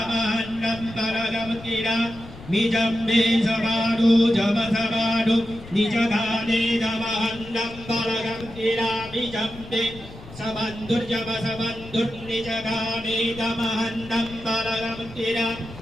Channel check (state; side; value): noise; left; rumble, 17 dB below the sound